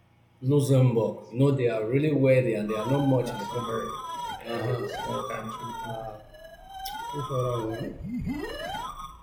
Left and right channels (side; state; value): both; identical; correlation 1.00